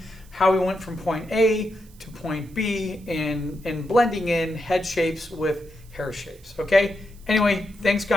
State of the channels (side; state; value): right; noise; hiss, 27 dB below the sound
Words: how we went from point A to point B and blending in head shapes with hair shapes. Okay? Anyway, thanks